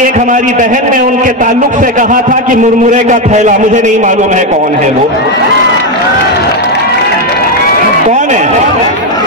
एक हमारी बहन ने उनके ताल्लुक से कहा था कि मुरमुरे का थैला, मुझे नहीं मालूम है कौन है वो, कौन है?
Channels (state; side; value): normal; both; correlation 0.07